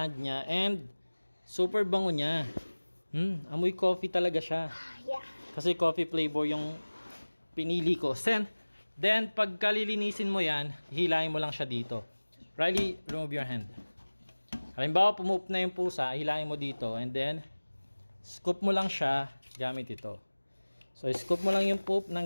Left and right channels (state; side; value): inverted; both; correlation -1.00